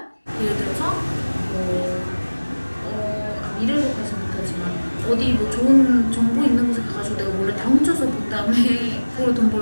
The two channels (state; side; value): inverted; both; correlation -1.00